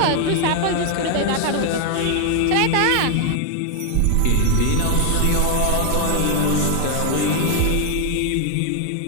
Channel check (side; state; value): both; different; correlation 0.00